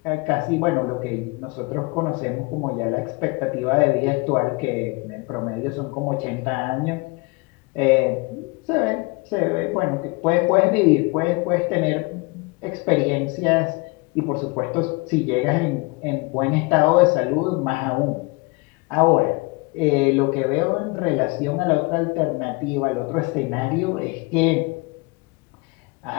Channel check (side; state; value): right; quieter; 27.2 dB